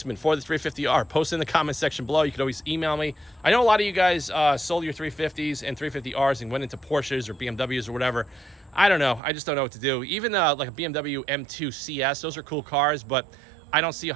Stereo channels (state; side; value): drops out; left; at 9.2 s